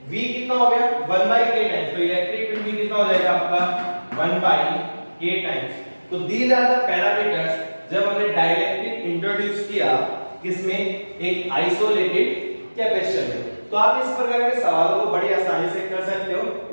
V कितना हो गया 1/K टाइम्स, तो इलेक्ट्रिक फील्ड भी कितना हो जाएगा आपका 1/K टाइम्स। तो दीज आर द पैरामीटर्स जब हमने डाइलेक्ट्रिक इंट्रोड्यूस किया किसमें, एक आइसोलेटेड कैपेसिटर में। तो आप इस प्रकार के सवालों को बड़ी आसानी से कर सकते हो,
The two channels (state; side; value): inverted; both; correlation -1.00